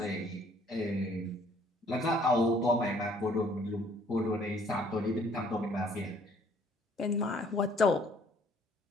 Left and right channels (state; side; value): normal; both; correlation 0.60